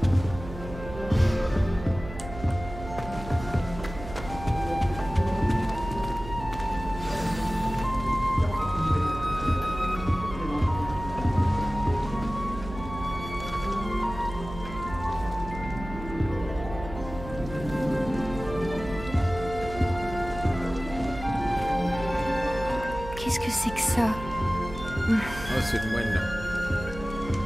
Qu'est-ce que c'est que ça? Ah, c'est le moine là.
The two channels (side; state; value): right; noise; hum, 12 dB below the sound